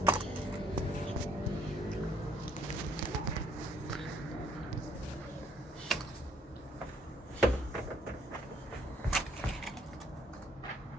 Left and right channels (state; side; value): normal; both; correlation 0.64